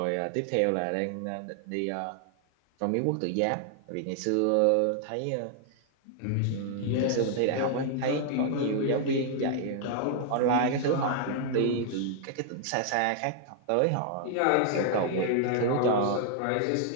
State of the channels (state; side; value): different; both; correlation -0.01